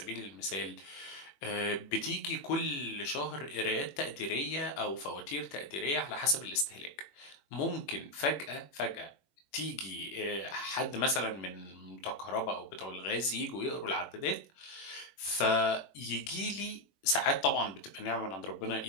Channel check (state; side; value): late; right; 21 ms